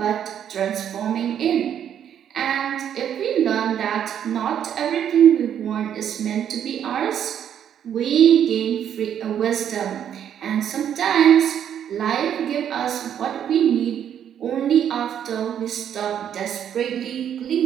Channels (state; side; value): quieter; left; 9.4 dB